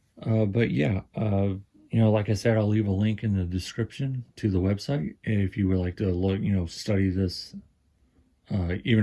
But yeah, like I said, I'll leave a link in the description to the website if you would like to look, study this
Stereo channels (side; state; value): both; identical; correlation 1.00